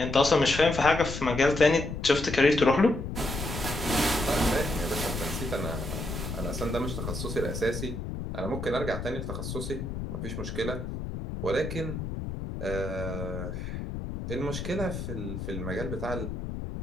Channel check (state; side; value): noise; left; rumble, 6 dB below the sound